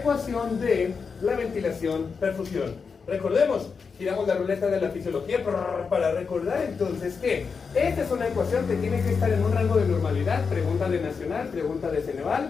de la ventilación-perfusión. Recordemos, giramos la ruleta de la fisiología para recordar entonces que esta es una ecuación que tiene que estar en un rango de normalidad, pregunta de Nacional, pregunta de Ceneval,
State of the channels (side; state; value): right; quieter; 5.4 dB